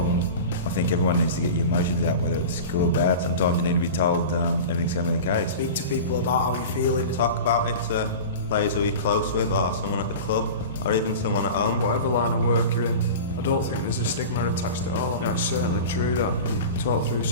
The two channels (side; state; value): both; inverted; correlation -0.32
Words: I think everyone needs to get your emotions out, whether it's good or bad. Sometimes you need to be told everything's going to be okay. Speak to people about how you're feeling. Talk about it to players who you're close with or someone at the club or even someone at home. Whatever line of work you're in, I don't think there's a stigma attached at all. It's certainly true that you talk through